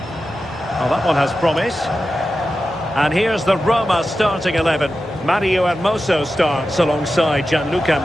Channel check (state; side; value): normal; both; correlation 0.92